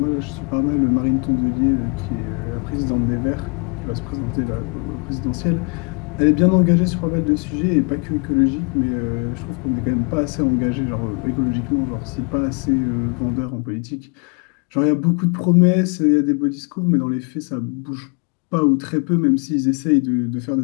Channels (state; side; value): quieter; right; 35.2 dB